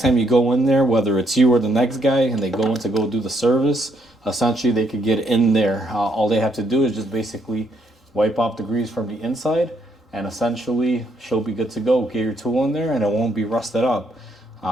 time you go in there, whether it's you or the next guy, and they go in to go do the service, essentially they could get in there. All they have to do is just basically wipe off the grease from the inside, and essentially she'll be good to go. Get your tool in there and it won't be rusted up.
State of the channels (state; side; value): normal; both; correlation 0.73